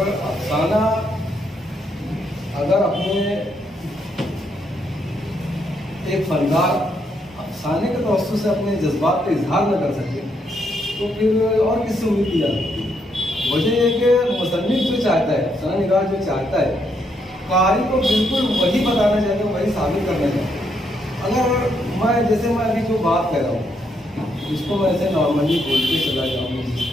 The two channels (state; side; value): normal; both; correlation 0.76